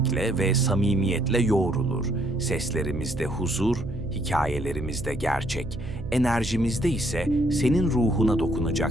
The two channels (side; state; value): right; noise; hum, 10 dB below the sound